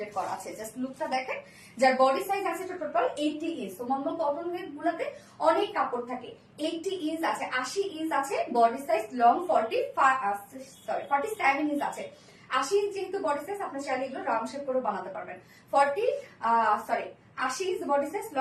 করা আছে। জাস্ট লুকটা দেখেন। যার বডি সাইজ আছে টোটাল 80 ইঞ্চ। তো নরমাল কটন ওয়ের গুলাতে অনেক কাপড় থাকে। 80 ইঞ্চ আছে, 80 ইঞ্চ আছে বডি সাইজ, লং 47 ইঞ্চ আছে। 80 ইঞ্চ যেহেতু বডি সাইজ, আপনি চাইলে এগুলো রাউন্ড শেপ করে বানাতে পারবেন। 80 inch body size,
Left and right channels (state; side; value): identical; both; correlation 1.00